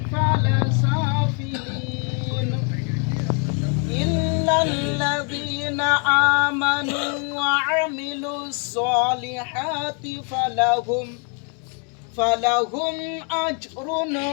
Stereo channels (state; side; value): quieter; right; 39.2 dB